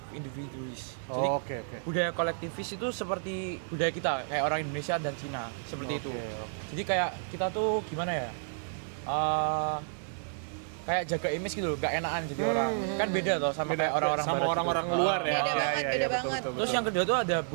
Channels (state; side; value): silent; left; digital silence